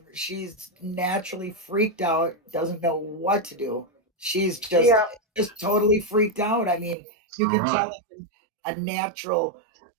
naturally freaked out, doesn't know what to do. She's just totally freaked out. I mean, you can tell it's a natural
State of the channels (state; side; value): drops out; left; at 7.0 s